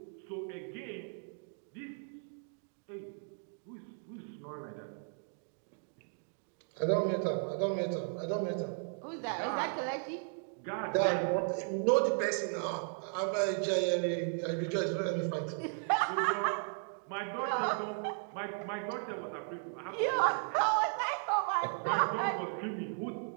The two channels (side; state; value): left; silent; 54 dB below the other